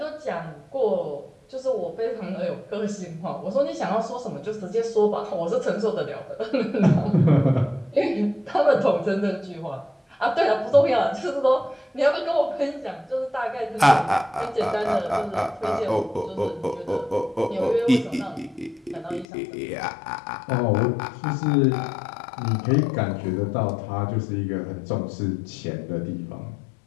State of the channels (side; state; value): right; drops out; at 19.2 s